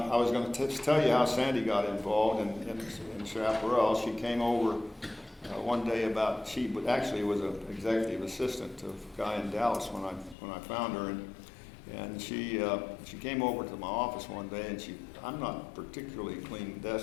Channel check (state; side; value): drops out; right; at 10.4 s